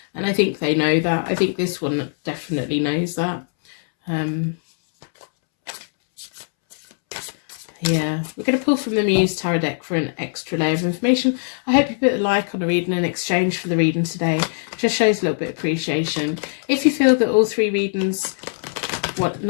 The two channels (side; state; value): right; silent; 65 dB below the other